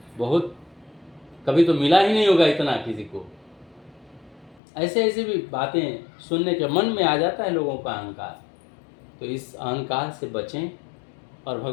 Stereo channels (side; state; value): right; drops out; at 4.6 s